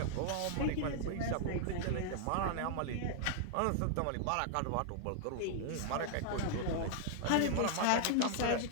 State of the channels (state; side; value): different; both; correlation 0.00